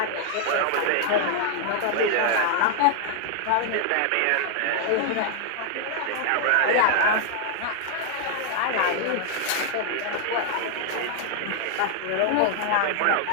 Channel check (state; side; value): different; both; correlation 0.00